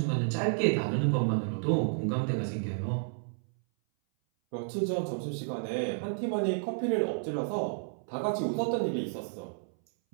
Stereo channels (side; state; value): left; silent; 57 dB below the other